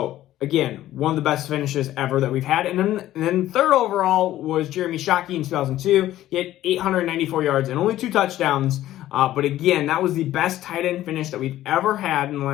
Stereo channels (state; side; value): quieter; right; 13.9 dB